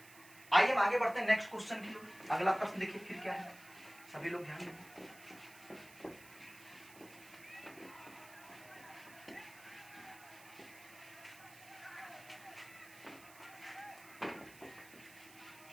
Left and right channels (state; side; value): noise; right; hiss, 20 dB below the sound